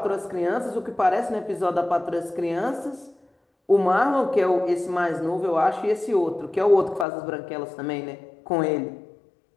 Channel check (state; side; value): drops out; right; at 7.1 s